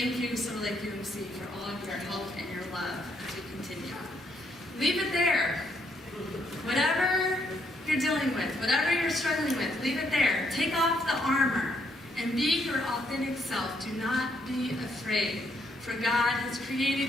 you, Summer Lake UMC, for all of your help and your love as we continue. Leave it there. Whatever you're you're dealing with, whatever you're struggling with, leave it there. Take off the armor and be your authentic self. Do not be afraid, for God has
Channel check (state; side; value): normal; both; correlation 0.73